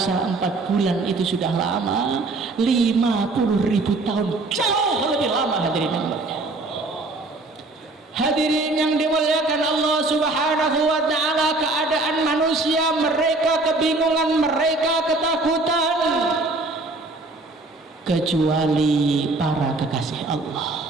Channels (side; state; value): left; quieter; 3.2 dB